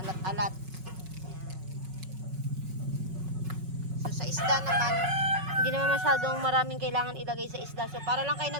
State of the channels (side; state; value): left; late; 5.4 ms